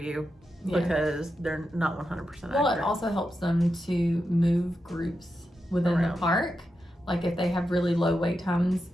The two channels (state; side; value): normal; both; correlation 0.88